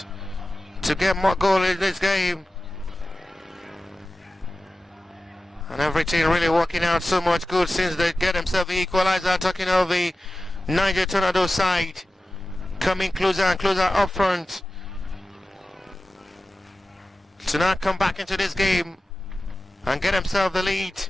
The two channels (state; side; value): normal; both; correlation 0.95